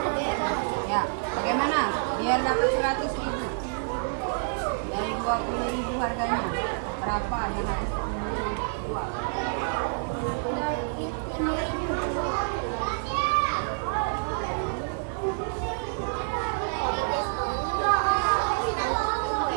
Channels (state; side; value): silent; left; 59 dB below the other